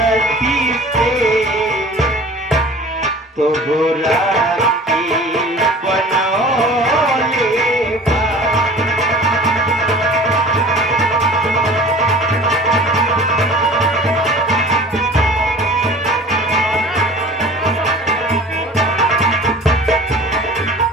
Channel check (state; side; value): normal; both; correlation 0.43